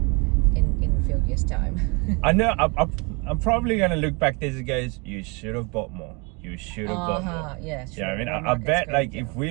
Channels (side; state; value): left; quieter; 30.4 dB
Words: in a few years' time. I know, I'm probably going to look back this and goes, you should have bought more. You should have bought more. Yeah, sure. Yeah, I mean, I bet, like, if